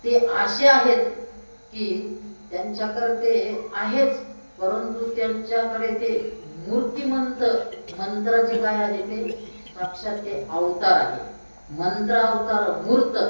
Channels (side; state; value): both; inverted; correlation -1.00